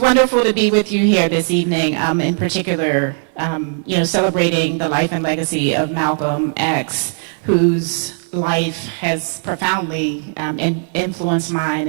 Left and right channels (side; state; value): left; silent; 59 dB below the other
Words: to be with you here this evening, in particular, celebrating the life and legacy of Malcolm X, whose life has profoundly influenced mine